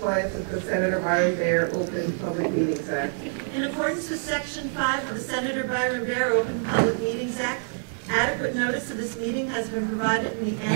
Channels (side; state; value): left; silent; 61 dB below the other